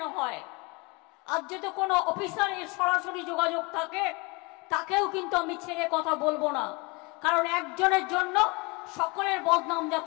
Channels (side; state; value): right; quieter; 27.7 dB